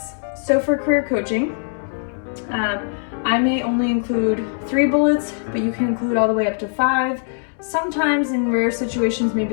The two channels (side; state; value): right; silent; 65 dB below the other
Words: So for career coaching, I may only include 3 bullets, but you can include all the way up to 5. Sometimes in rare situations,